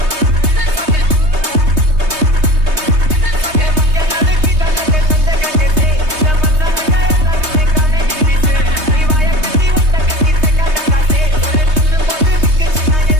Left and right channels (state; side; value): late; left; 3.2 ms